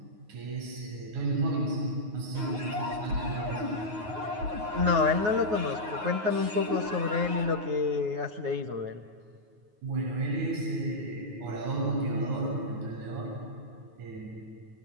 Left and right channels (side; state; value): left; late; 9.5 ms